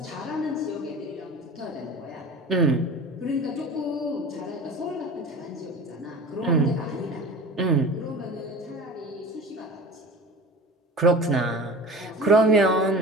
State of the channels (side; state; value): both; normal; correlation 0.36